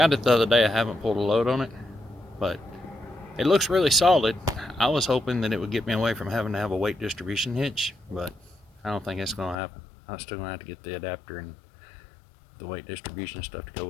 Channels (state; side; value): drops out; right; at 9.6 s